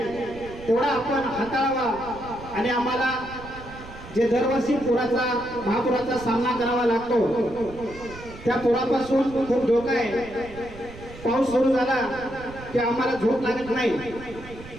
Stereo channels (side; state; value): right; noise; rumble, 16 dB below the sound